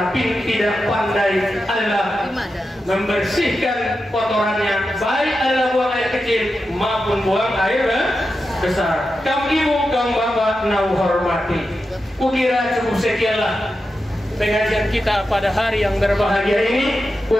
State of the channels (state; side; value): normal; both; correlation 0.90